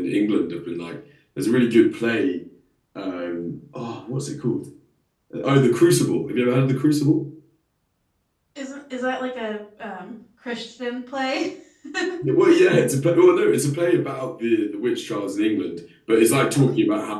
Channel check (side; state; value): both; identical; correlation 1.00